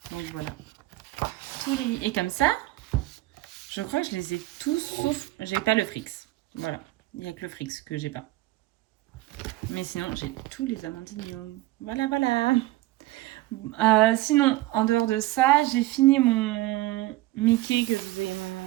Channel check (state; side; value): quieter; left; 17.9 dB